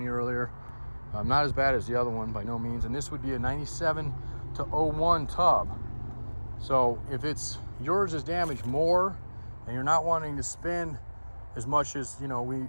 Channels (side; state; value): both; inverted; correlation -1.00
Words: you earlier. Not as bad as the other one by no means, and this would be a 97 to 01 tub. So if it's yours is damaged more and you're not wanting to spend as much as, you know,